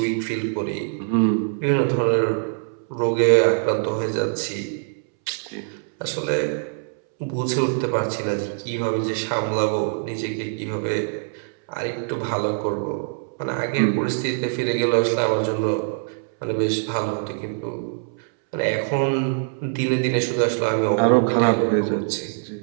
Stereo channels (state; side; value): silent; left; 63 dB below the other